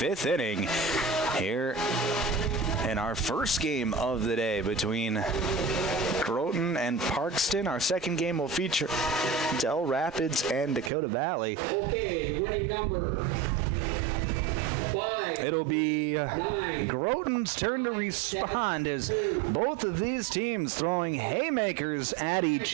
inning. Here in our first game of the day between Groton and Parkston. Our second game will feature Del Rapids and Dakota Valley. Okay, winning number 5. It'll be Groton's turn to respond as both of these teams throwing haymakers at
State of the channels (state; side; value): drops out; left; at 10.9 s